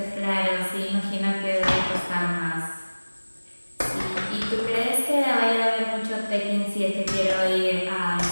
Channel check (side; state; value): both; inverted; correlation -1.00